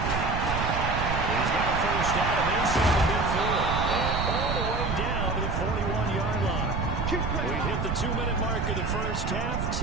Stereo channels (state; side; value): noise; right; rumble, 2 dB below the sound